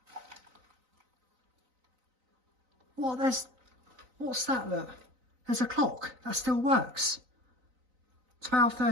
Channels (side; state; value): left; late; 3.9 ms